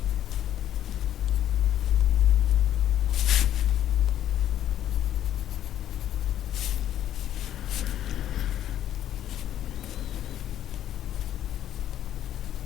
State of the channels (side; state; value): right; quieter; 11.5 dB